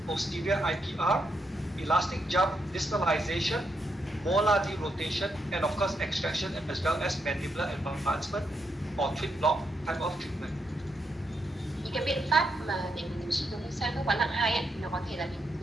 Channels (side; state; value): both; normal; correlation 0.80